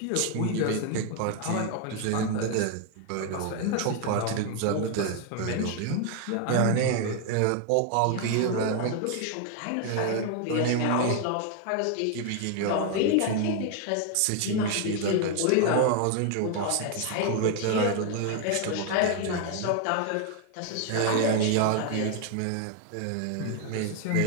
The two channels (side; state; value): both; different; correlation 0.00